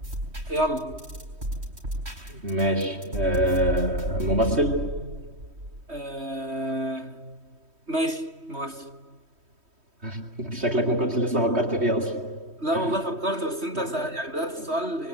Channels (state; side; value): late; left; 3.1 ms